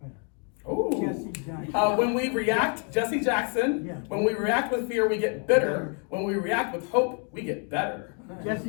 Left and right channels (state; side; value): quieter; right; 39.3 dB